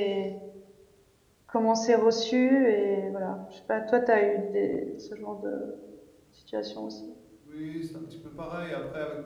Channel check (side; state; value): both; identical; correlation 1.00